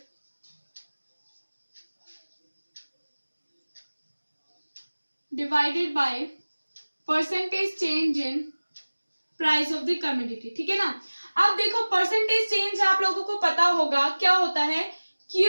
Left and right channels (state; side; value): inverted; both; correlation -1.00